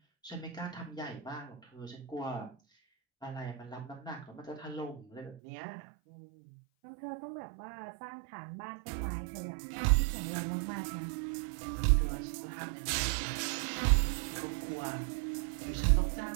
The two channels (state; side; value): drops out; left; at 5.4 s